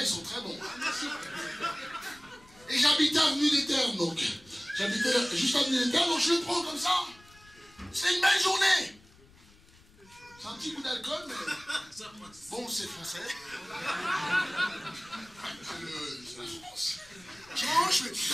ils sont très bons. Et j'habitais avenue des Terres, donc. J'habitais juste avenue des Terres, donc je le prends comme ça. C'est une belle journée. C'est un petit goût d'alcool, mais bon, c'est français. C'est la France. Je mange, mais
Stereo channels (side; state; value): left; noise; rumble, 26 dB below the sound